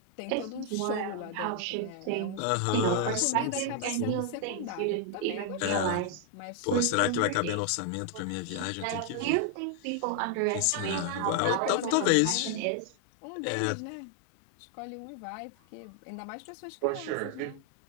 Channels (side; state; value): both; different; correlation 0.00